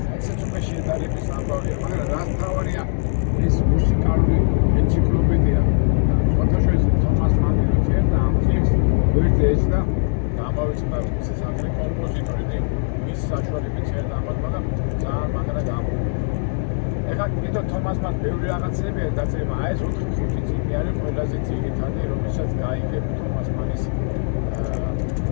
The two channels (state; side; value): silent; right; digital silence